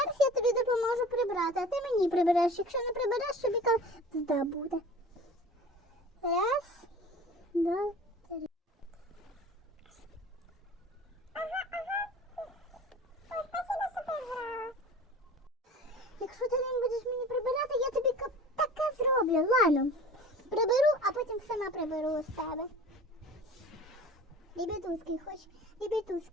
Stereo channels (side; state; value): both; normal; correlation 0.41